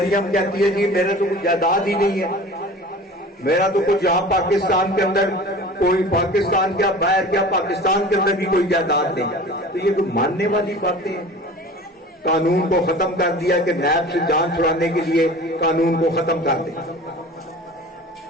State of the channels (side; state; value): both; normal; correlation 0.40